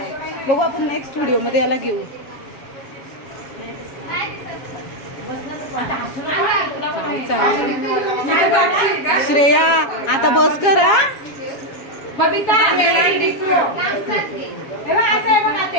बघू आपण नेक्स्ट व्हिडिओ मध्ये याला घेऊ. काय चाललंय श्रेया. आता बस कर. बबिता मेरा टिकलो असं आहे बघा. ते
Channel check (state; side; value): late; right; 7.3 ms